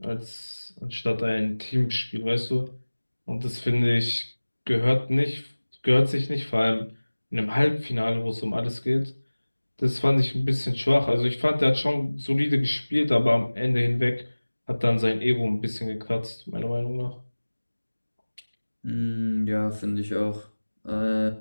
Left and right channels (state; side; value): inverted; both; correlation -1.00